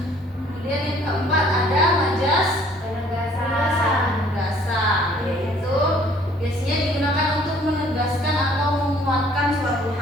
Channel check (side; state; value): both; normal; correlation 0.58